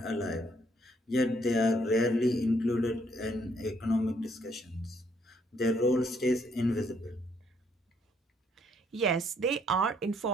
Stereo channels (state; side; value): normal; both; correlation 0.69